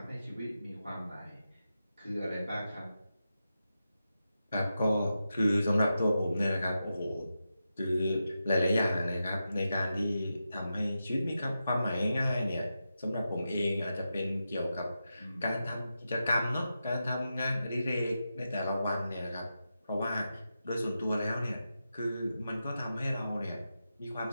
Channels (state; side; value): inverted; both; correlation -0.89